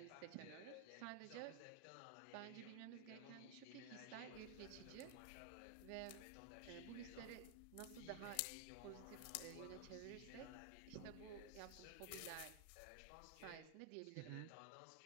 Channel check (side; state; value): both; different; correlation 0.00